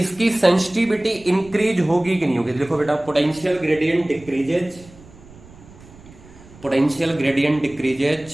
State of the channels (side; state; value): right; noise; rumble, 22 dB below the sound